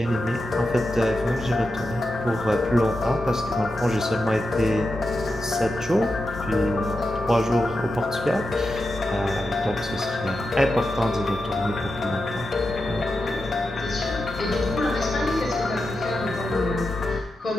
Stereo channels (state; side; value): normal; both; correlation 0.89